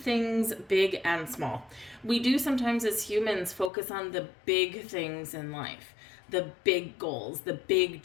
things big and small. We do sometimes as humans focus on the big things in life, the big goals, the big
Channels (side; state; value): right; drops out; at 3.7 s